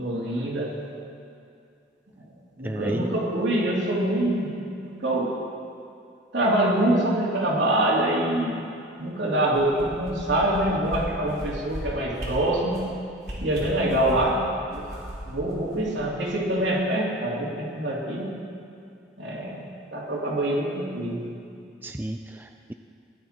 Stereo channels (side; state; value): both; normal; correlation 0.35